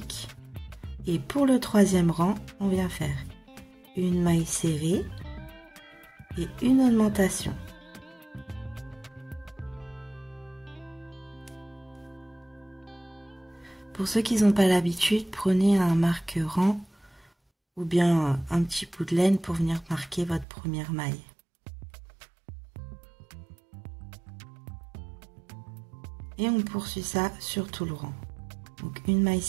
Et pour le troisième rang, on vient faire une maille serrée et une augmentation. Pour ceux qui n'ont pas l'habitude, prenez un marqueur-rang ou bien un petit bout de laine pour venir marquer votre première maille. Et on poursuit ça sur tout le rang. Donc une maille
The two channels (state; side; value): drops out; left; at 20.5 s